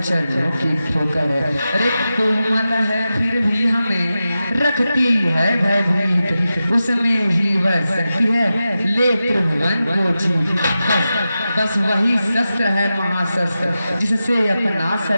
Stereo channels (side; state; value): both; inverted; correlation -0.92